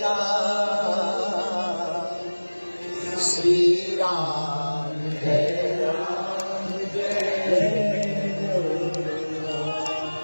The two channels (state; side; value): inverted; both; correlation -1.00